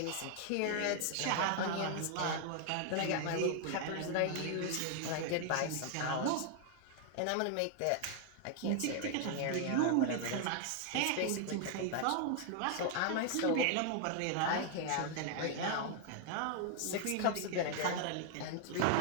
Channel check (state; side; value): different; both; correlation 0.00